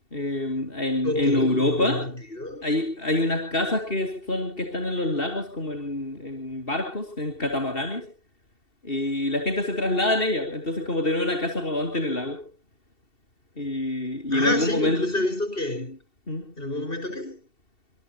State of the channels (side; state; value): right; late; 2.7 ms